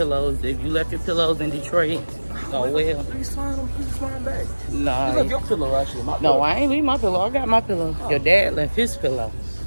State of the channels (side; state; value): both; inverted; correlation -1.00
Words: If you left your pillows in Detroit, oh well. Please find back. Nah. You left your pillow, actually. My pillow. No, I ain't leave my pillow. I got my pillow. Your dad left his pillow.